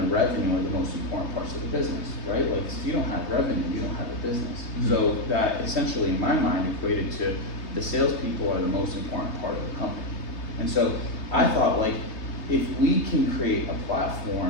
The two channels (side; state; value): right; late; 3.3 ms